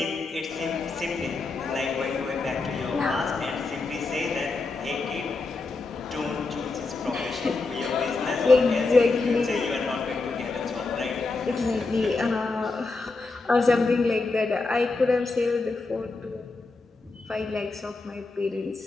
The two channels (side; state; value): right; quieter; 3.7 dB